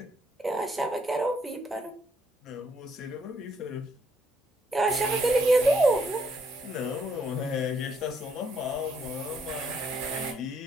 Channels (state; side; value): normal; both; correlation 0.71